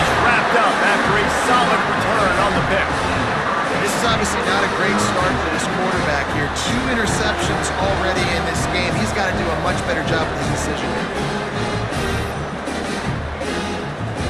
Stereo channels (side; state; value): both; identical; correlation 1.00